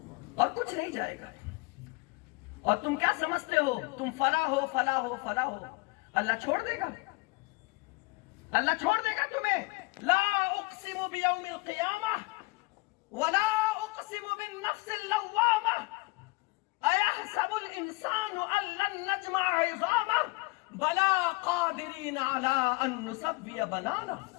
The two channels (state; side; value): quieter; right; 25.2 dB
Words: اور کچھ نہیں جائے گا۔ اور تم کیا سمجھتے ہو تم فلاح ہو، فلاح ہو، فلاح ہو؟ اللہ چھوڑ دے گا، اللہ چھوڑ دے گا تمہیں۔ لا اقسم بیوم القیامہ ولا اقسم بالنفس اللوامہ ایحسب الانسان ان لن نجمع عظامہ بلا قادرین علی ان نسوی بنانہ۔